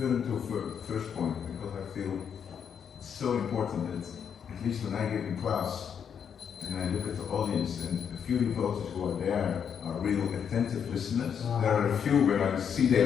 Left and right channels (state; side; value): quieter; right; 7.7 dB